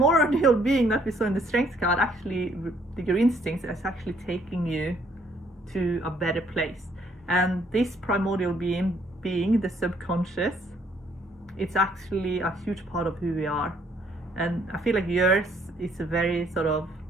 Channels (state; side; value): normal; both; correlation 0.66